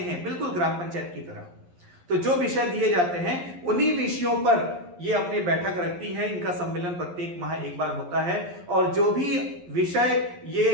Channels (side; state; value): left; late; 11 ms